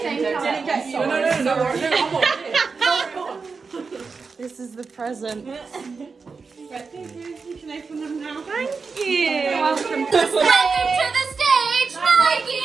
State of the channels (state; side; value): quieter; left; 4.8 dB